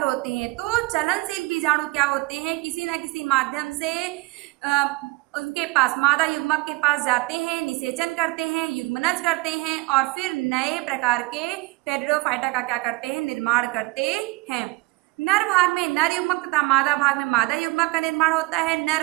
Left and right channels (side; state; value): left; quieter; 23.5 dB